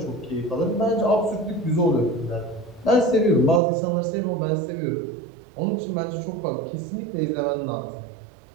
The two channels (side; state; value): left; drops out; at 3.6 s